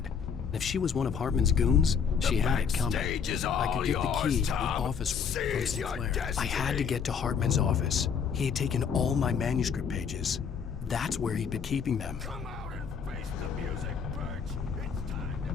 If she was one of Hartman's goons, she had it coming. I could get the key to the office from Sinclair. I had to get to Hartman's office. He had taken all my manuscript pages. That's where he'd been keeping them. Come out and face the music, Birch. It's time to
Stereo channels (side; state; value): right; quieter; 6.7 dB